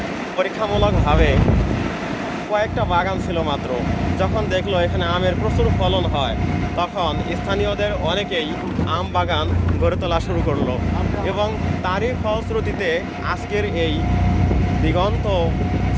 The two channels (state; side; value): identical; both; correlation 1.00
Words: পরীক্ষামূলকভাবে কয়েকটা বাগান ছিল মাত্র, যখন দেখলো এখানে আমের প্রচুর ফলন হয়, তখন স্থানীয়দের অনেকেই আম বাগান গড়ে তোলা শুরু করলো। এবং তারই ফলশ্রুতিতে আজকের এই দিগন্ত